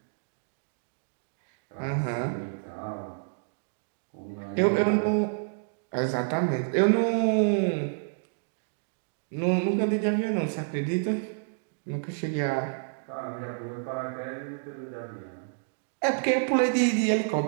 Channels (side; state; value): left; silent; digital silence